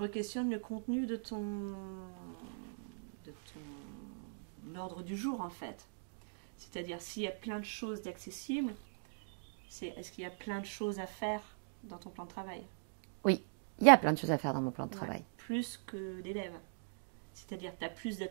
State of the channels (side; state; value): left; silent; digital silence